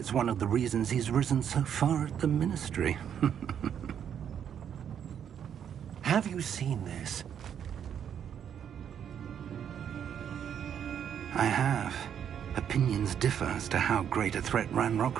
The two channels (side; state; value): left; quieter; 8.7 dB